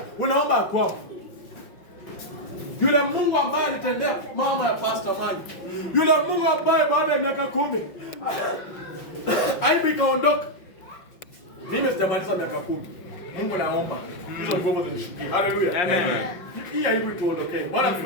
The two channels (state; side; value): late; right; 5.7 ms